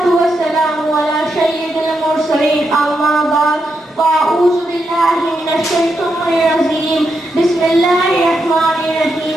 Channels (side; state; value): both; normal; correlation 0.83